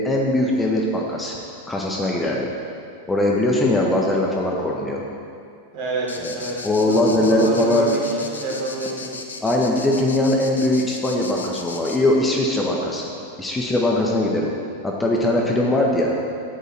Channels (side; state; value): both; normal; correlation 0.43